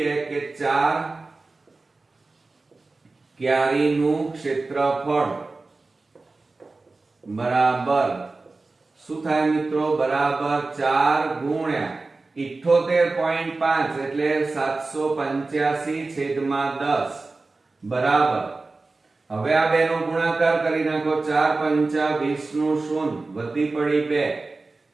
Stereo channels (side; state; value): left; quieter; 3.5 dB